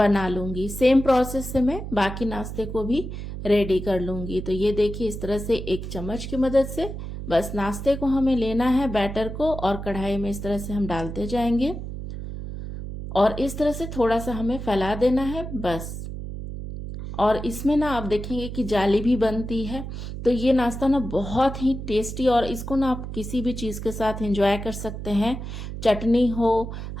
लूँगी। सेम प्रोसेस से मैं बाकी नाश्ते को भी रेडी कर लूँगी। तो ये देखिए इस तरह से 1 चम्मच की मदद से बस नाश्ते को हमें लेना है बैटर को और कढ़ाई में इस तरह से हम डालते जाएंगे और इस तरह से थोड़ा सा हमें फैला देना है बस। और इसमें ना आप देखेंगे कि जाली भी बनती है। तो ये नाश्ता ना बहुत ही टेस्टी और इसको ना आप किसी भी चीज़ के साथ एंजॉय कर सकते हैं। चटनी हो,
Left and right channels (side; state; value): right; noise; hum, 8 dB below the sound